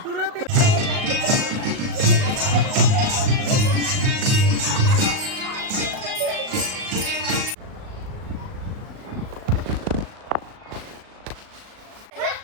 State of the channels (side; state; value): left; late; 38 ms